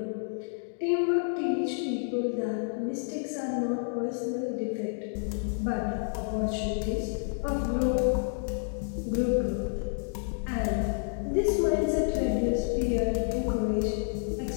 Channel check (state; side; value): silent; right; digital silence